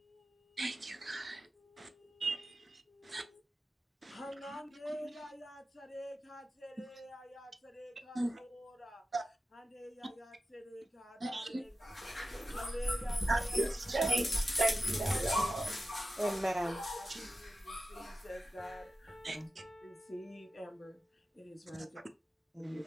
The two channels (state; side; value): normal; both; correlation 0.93